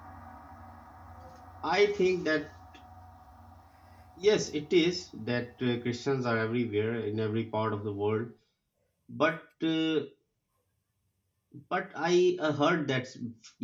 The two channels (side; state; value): both; identical; correlation 1.00